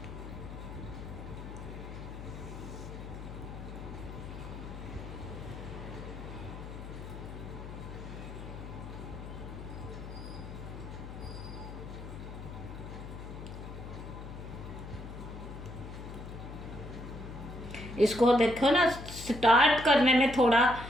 इसको देखो ना, स्टार्ट करने में थोड़ा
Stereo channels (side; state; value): left; noise; hum, 10 dB below the sound